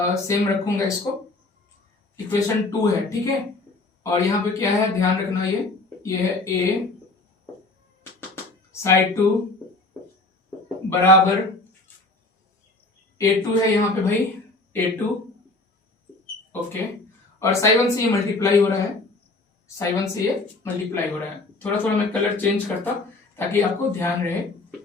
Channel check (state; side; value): quieter; right; 3.1 dB